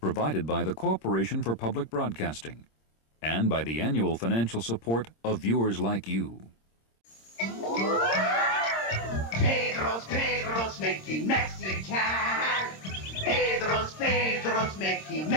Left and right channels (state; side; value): late; right; 26 ms